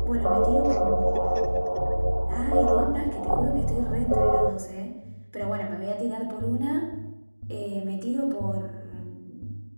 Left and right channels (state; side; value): inverted; both; correlation -1.00